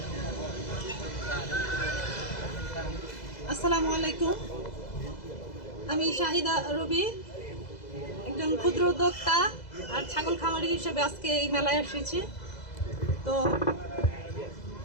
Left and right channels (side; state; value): right; late; 2.0 ms